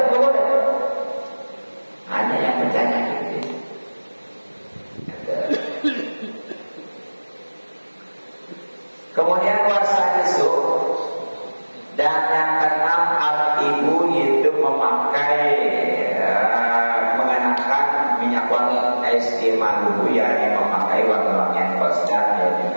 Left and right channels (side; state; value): both; inverted; correlation -1.00